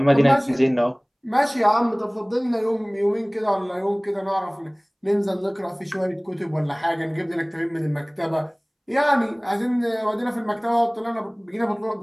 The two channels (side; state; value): both; identical; correlation 1.00